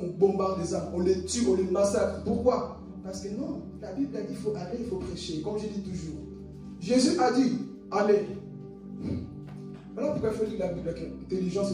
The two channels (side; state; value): both; identical; correlation 1.00